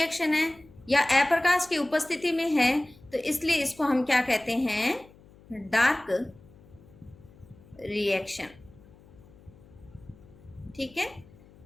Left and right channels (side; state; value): left; noise; hum, 24 dB below the sound